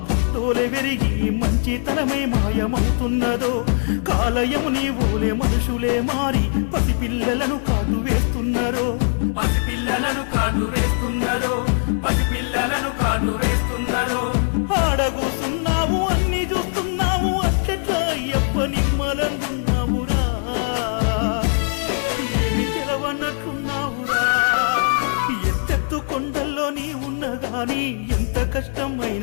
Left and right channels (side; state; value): right; silent; digital silence